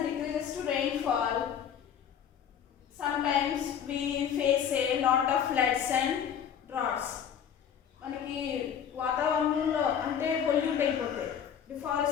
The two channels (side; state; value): right; quieter; 8.5 dB